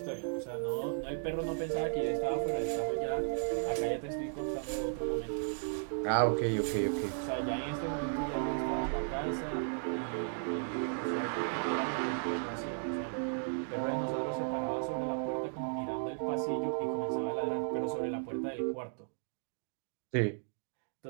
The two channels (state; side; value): silent; left; digital silence